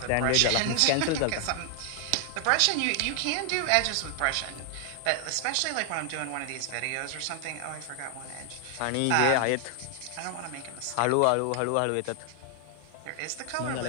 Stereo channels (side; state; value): both; different; correlation 0.00